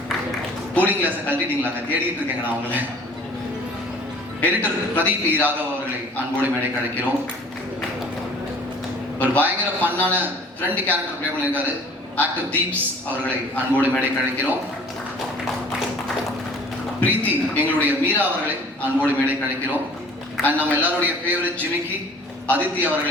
கூலிங் கிளாஸை கழட்டிட்டீங்களா? தேடிட்டு இருக்கேங்க நான் அவங்கள. எடிட்டர் பிரதீப் ராகவ் அவர்களை அன்போடு மேடை கிடைக்கிறோம். ஒரு பயங்கர ஃபன்னான ஃப்ரெண்ட் கேரக்டர் பிளே பண்ணியிருக்காரு ஆக்டர் தீப்ஸ் அவர்களை அன்போடு மேடை கிடைக்கிறோம். பிரீத்தி எங்களுடைய மீரா அவர்களை அன்போடு மேடை கிடைக்கிறோம். அண்ட் நம்ம எல்லாருடைய ஃபேவரட் ஜிமிக்கி அதித்தி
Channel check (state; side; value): normal; both; correlation 0.49